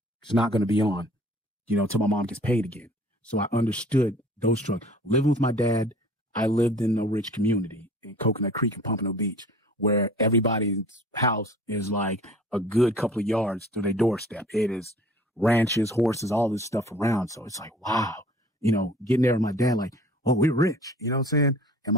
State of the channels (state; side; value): normal; both; correlation 0.49